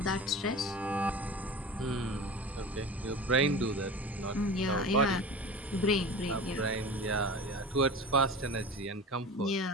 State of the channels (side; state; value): both; normal; correlation 0.33